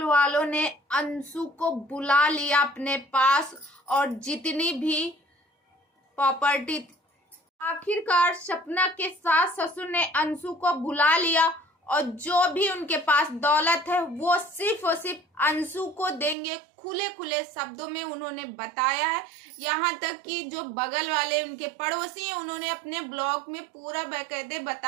वालों ने अंशु को बुला लिया अपने पास और जितनी भी प्रॉपर्टी, आखिरकार सपना के सास ससुर ने अंशु को बुला लिया और जो भी उनके पास दौलत है वो सिर्फ और सिर्फ अंशु को देंगे। खुले खुले शब्दों में उन्होंने बताया है। यहाँ तक कि जो बगल वाले उनके पड़ोसी हैं उन्होंने अपने ब्लॉग में पूरा बाकायदे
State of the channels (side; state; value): left; drops out; at 16.4 s